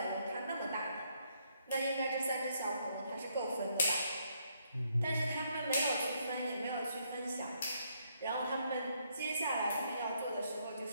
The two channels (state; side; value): inverted; both; correlation -0.73